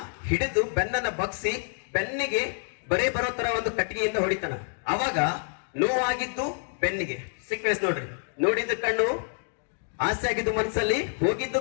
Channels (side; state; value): right; silent; 60 dB below the other